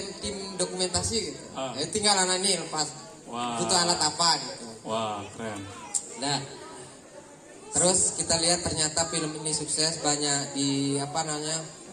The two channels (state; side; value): identical; both; correlation 1.00